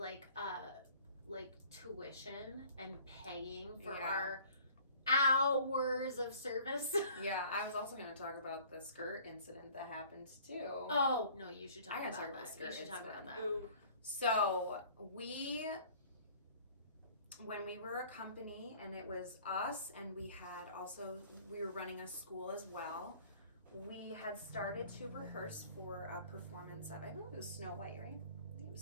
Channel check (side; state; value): both; inverted; correlation -0.52